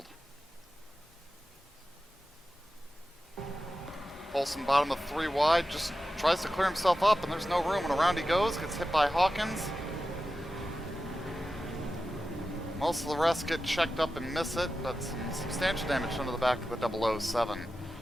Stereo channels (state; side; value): normal; both; correlation 0.92